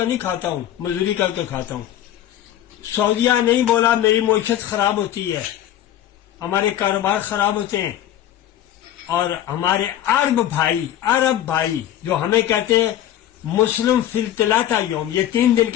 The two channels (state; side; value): quieter; right; 11.9 dB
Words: نہیں کھاتا ہوں، مزدوری کر کے کھاتا ہوں۔ سعودیہ نہیں بولا میری معیشت خراب ہوتی ہے، ہمارے کاروبار خراب ہوتے ہیں، اور ہمارے عرب بھائی جو ہمیں کہتے ہیں مسلم فی الثلاثہ یوم، یہ 3 دن